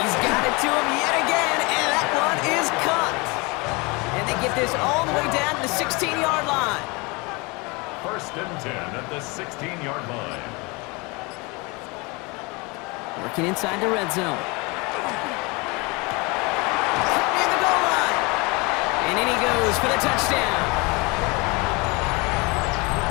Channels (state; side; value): quieter; right; 27.0 dB